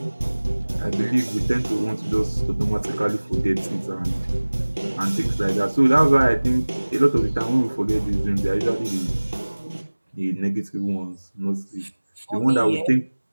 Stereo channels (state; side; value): inverted; both; correlation -1.00